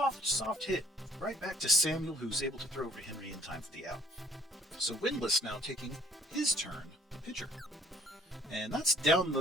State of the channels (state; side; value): normal; both; correlation 0.57